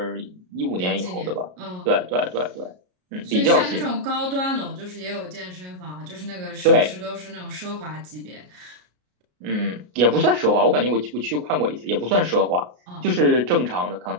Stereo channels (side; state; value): left; late; 33 ms